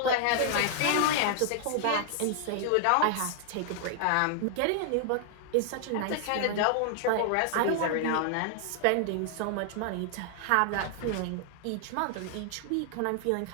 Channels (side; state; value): both; different; correlation 0.00